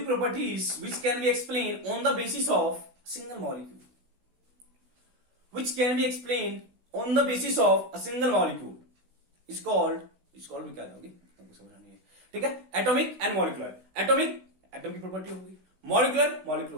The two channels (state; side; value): late; left; 16 ms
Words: single molecule, which can be explained on the basis of a single molecule is called भी क्या होगी तुमको समझ नहीं है, ठीक है। Atomic and molecular, atomic atom की प्रॉपर्टी होगी, मॉलिक्यूलर प्रॉपर्टी